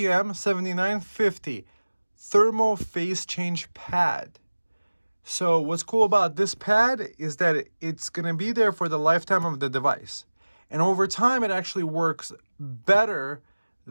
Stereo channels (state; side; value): inverted; both; correlation -1.00